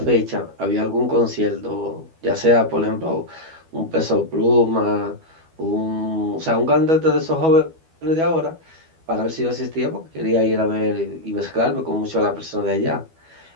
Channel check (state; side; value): late; left; 12 ms